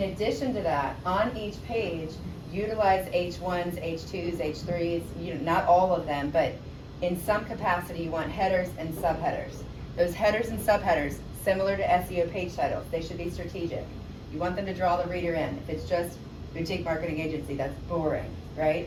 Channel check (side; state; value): both; identical; correlation 1.00